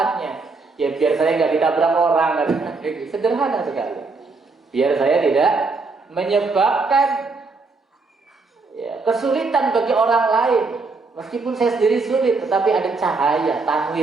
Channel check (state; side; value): quieter; left; 3.9 dB